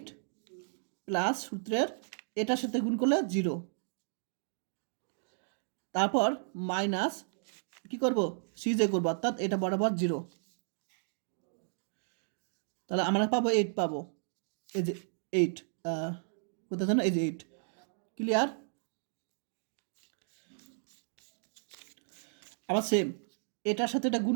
প্লাস সূত্রের এটার সাথে গুণ করলে 0, তারপর মাইনাস কি করব সিজে করব অর্থাৎ এটা বরাবর 0, তাহলে আমরা পাবো 8 পাবো, এই যে 8 কোথায় জানো এই যে 8, ক্লিয়ার। আবার সেম এটার সাথে এটা গুণ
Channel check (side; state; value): left; silent; digital silence